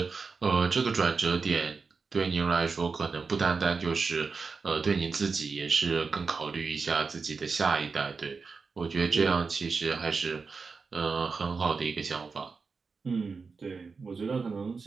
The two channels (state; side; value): quieter; left; 4.8 dB